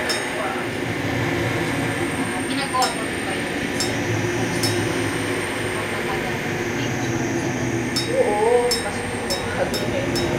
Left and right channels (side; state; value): both; identical; correlation 1.00